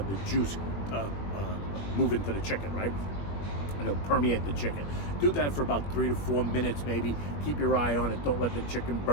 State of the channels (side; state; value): right; late; 21 ms